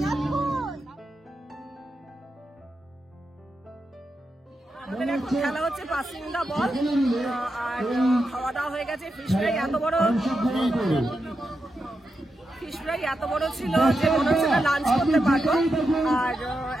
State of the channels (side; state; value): both; normal; correlation 0.87